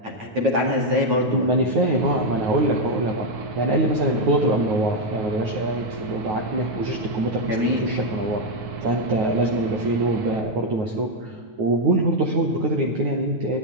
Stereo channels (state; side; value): late; left; 9.2 ms